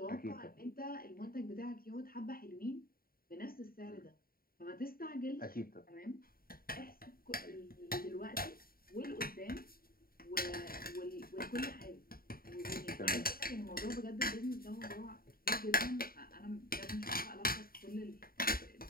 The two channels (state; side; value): late; right; 0.43 ms